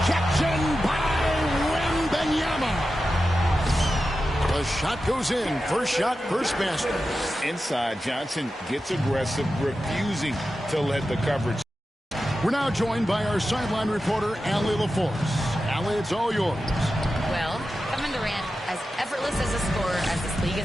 by Wembanyama. The shot goes in. First shot, first basket. Inside, Johnson gets aggressive, refusing to let the coverage. We're now joined by our sideline reporter, Allie LaForce. Allie, it's all yours. Well, Kevin Durant, as effortless as a scorer as this league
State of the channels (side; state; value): both; normal; correlation 0.92